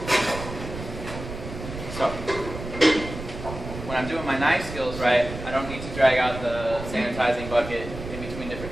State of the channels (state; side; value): noise; right; rumble, 9 dB below the sound